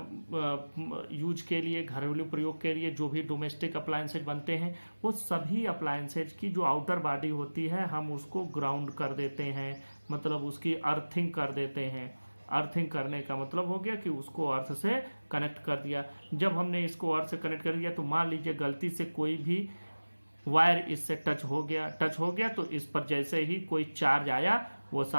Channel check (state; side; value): inverted; both; correlation -1.00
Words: यूज के लिए, घरेलू प्रयोग के लिए जो भी डोमेस्टिक अप्लायंसेज बनते हैं, वो सभी अप्लायंसेज की जो आउटर बॉडी होती है हम उसको ग्राउंड कर देते हैं, मतलब उसकी अर्थिंग कर देते हैं। अर्थिंग करने का मतलब हो गया कि उसको अर्थ से कनेक्ट कर दिया। जब हमने इसको अर्थ से कनेक्ट कर दिया तो मान लीजिए गलती से कोई भी वायर इससे टच हो गया तो इस पर जैसे ही कोई चार्ज आया, वो